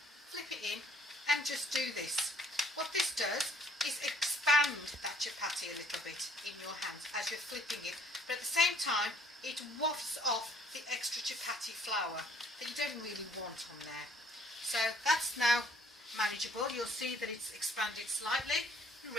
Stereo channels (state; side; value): normal; both; correlation 0.61